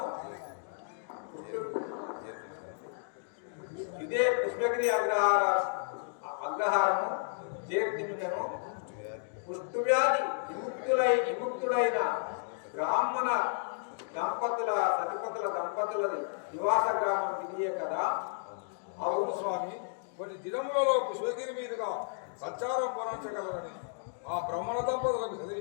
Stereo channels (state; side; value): silent; right; digital silence